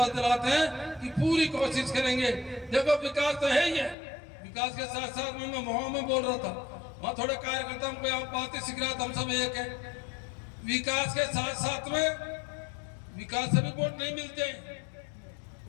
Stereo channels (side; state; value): right; drops out; at 4.0 s